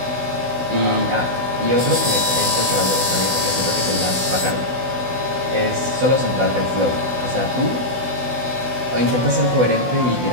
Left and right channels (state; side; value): late; left; 16 ms